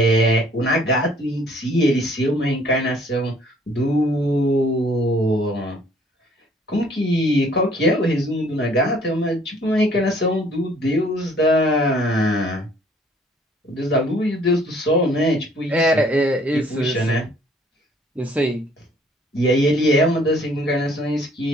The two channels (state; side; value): normal; both; correlation 0.59